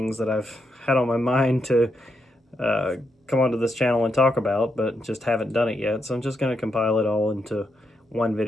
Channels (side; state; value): both; normal; correlation 0.82